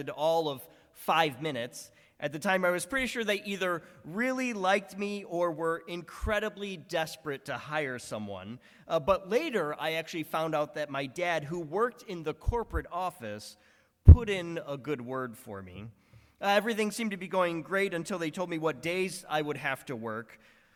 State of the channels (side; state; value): both; identical; correlation 1.00